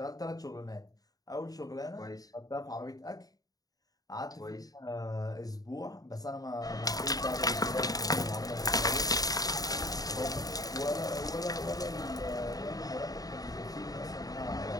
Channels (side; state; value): right; late; 0.18 ms